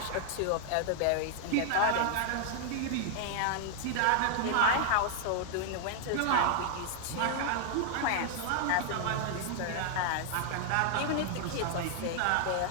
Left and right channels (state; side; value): different; both; correlation 0.00